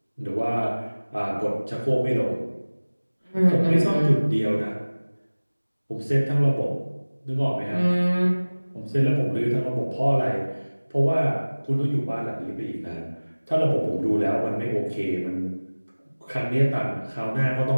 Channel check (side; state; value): both; inverted; correlation -1.00